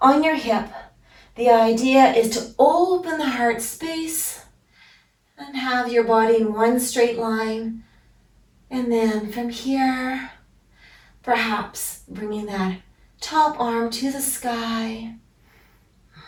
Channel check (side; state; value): both; identical; correlation 1.00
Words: on your hip. The idea is to open the heart space and have your body in one straight line. And then from here, perhaps bringing that top arm to the sky